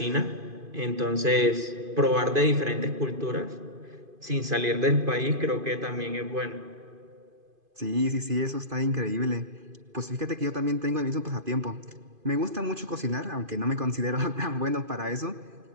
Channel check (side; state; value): left; late; 2.5 ms